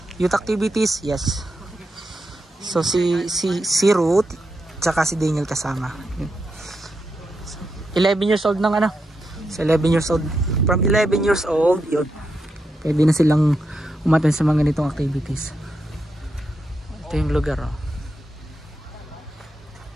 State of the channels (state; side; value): normal; both; correlation 0.85